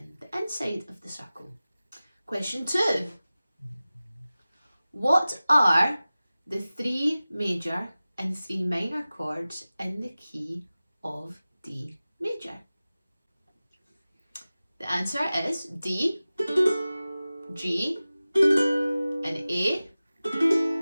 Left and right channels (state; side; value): inverted; both; correlation -0.97